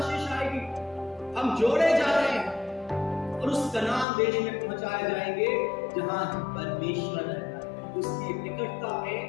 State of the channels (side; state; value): right; drops out; at 4.0 s